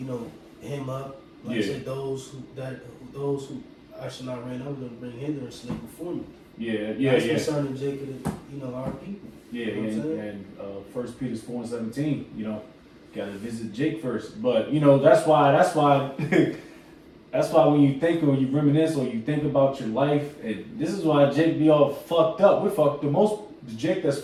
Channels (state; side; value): identical; both; correlation 1.00